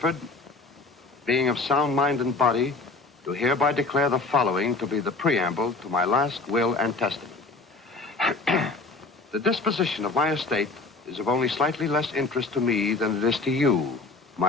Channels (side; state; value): right; quieter; 3.6 dB